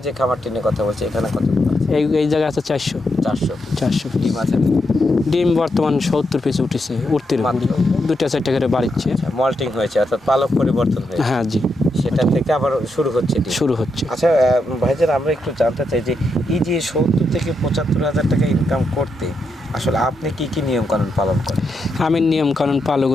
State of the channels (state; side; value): normal; both; correlation 0.83